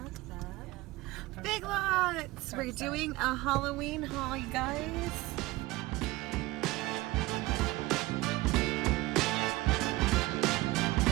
Big Lots! We're doing a Halloween haul, you guys.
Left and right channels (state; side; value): quieter; left; 19.9 dB